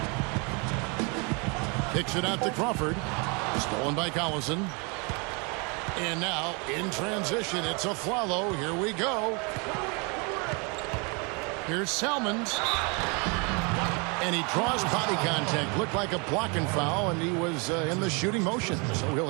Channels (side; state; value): left; quieter; 31.9 dB